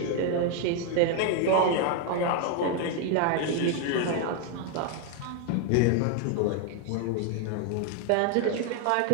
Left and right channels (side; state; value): both; different; correlation 0.01